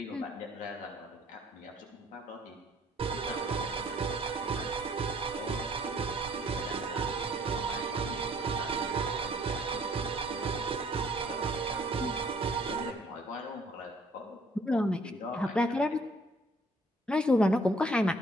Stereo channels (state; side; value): normal; both; correlation 0.60